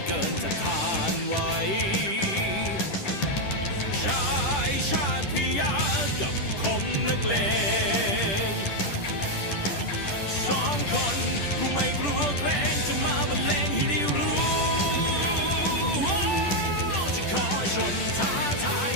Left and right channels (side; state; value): right; late; 10 ms